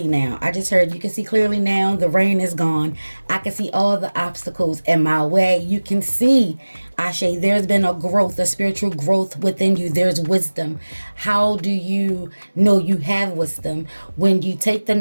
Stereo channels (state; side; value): inverted; both; correlation -1.00